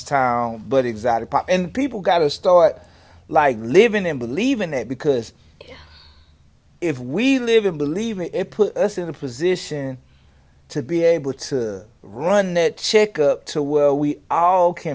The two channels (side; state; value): both; identical; correlation 1.00